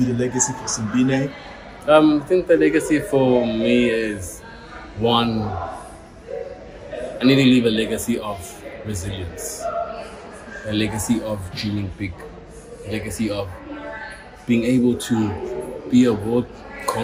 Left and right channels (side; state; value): both; identical; correlation 1.00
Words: the legacy for Simbine? I think the legacy for me is, one, I need to leave a legacy of resilience, a legacy of dreaming big, a legacy of being able to be a world